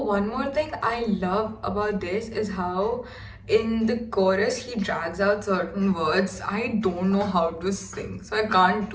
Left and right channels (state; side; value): identical; both; correlation 1.00